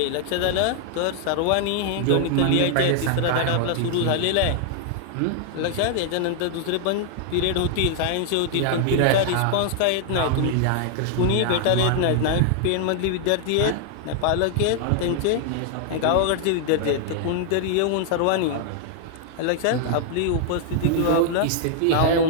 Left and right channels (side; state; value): both; different; correlation 0.00